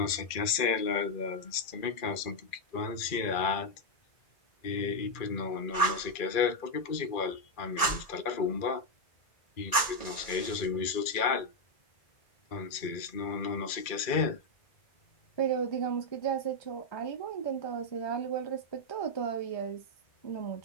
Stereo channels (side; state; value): right; late; 2.3 ms